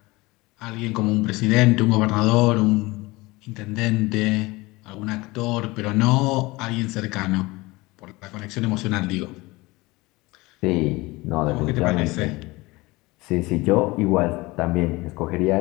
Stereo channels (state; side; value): quieter; right; 22.0 dB